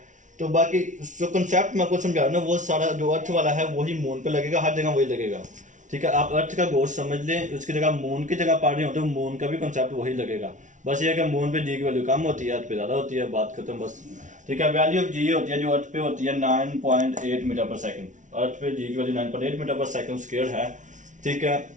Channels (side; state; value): left; late; 0.37 ms